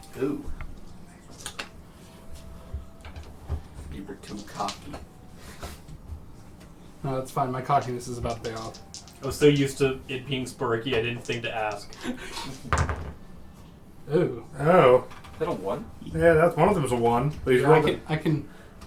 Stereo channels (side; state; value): both; identical; correlation 1.00